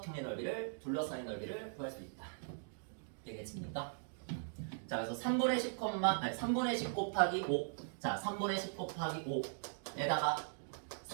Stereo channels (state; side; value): silent; left; digital silence